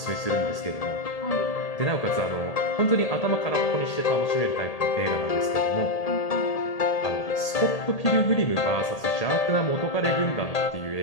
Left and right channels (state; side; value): late; right; 1.8 ms